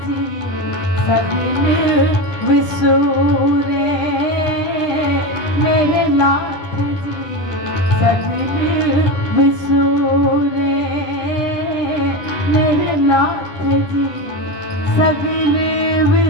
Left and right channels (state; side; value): late; right; 9.8 ms